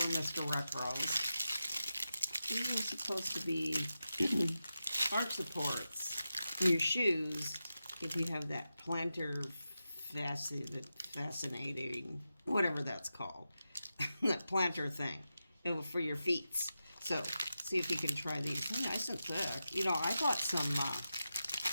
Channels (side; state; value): both; inverted; correlation -0.91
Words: Mr. Wrinkles. These are supposed to be arch supports in your shoes if you have that plantar fascinating, whatever that's called, that plantar thing for your feet. So see if you can try these. They're nice and thick. You know, I bought some, I